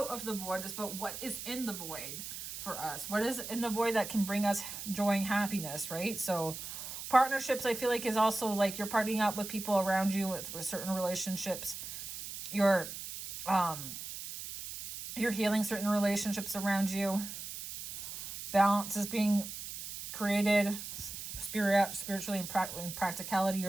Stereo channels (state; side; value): noise; right; hiss, 8 dB below the sound